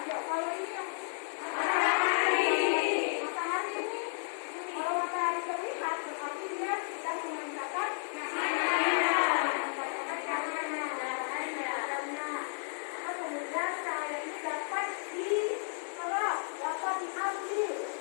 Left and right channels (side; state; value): right; silent; 56 dB below the other